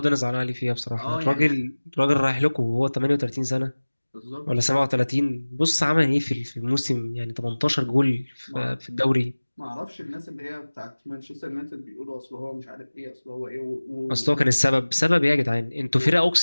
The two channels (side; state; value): both; inverted; correlation -1.00